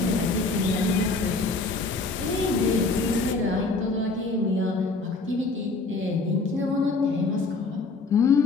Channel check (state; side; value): quieter; right; 3.7 dB